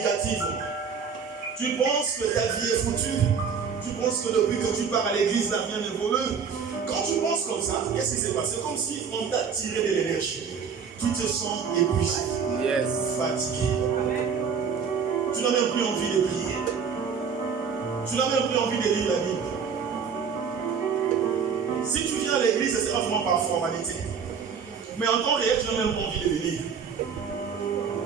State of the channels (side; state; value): left; quieter; 6.4 dB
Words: tu penses que ta vie est foutue, tu penses que depuis que tu pars à l'église, la rien n'est voleux. Quand tu penses comme ça, qu'est-ce qui s'est passé? C'est comme si on t'a tiré de l'énergie. Tu te sens épuisé, fatigué. Tu n'as même plus envie de prier. Tu n'as même plus envie de lire la Bible. Si tu viens à l'église, ce sera vraiment par formalité. Mais en temps réel, tu n'as même pas envie de venir.